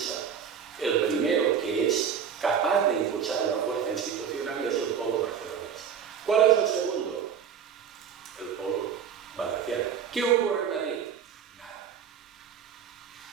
El primero que es capaz de impulsar una fuerza institucional es el polo barcelonés. ¿Cuál es el segundo? El polo valenciano. ¿Qué ocurre en Madrid? Nada.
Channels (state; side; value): quieter; left; 7.7 dB